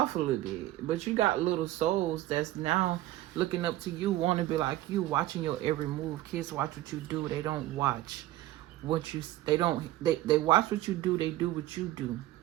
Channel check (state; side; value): quieter; left; 15.7 dB